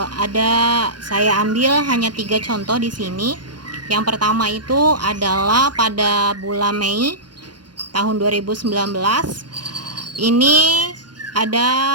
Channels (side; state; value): left; late; 0.70 ms